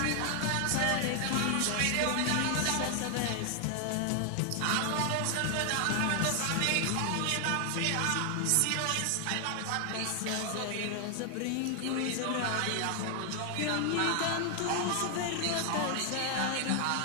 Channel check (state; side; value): different; both; correlation 0.00